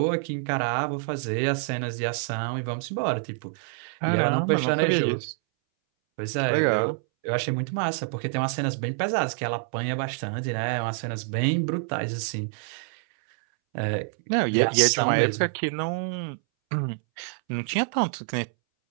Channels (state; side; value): silent; left; 60 dB below the other